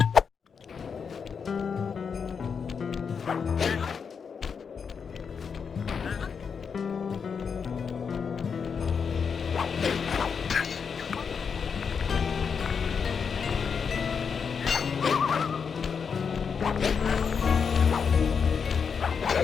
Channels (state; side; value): quieter; right; 6.2 dB